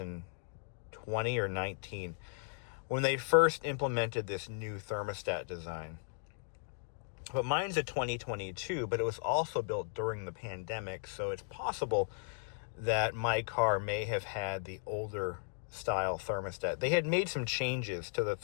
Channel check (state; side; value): silent; right; digital silence